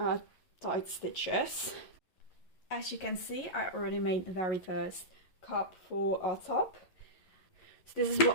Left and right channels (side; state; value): right; late; 11 ms